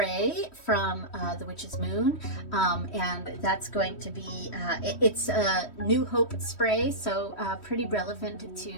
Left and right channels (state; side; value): late; right; 3.1 ms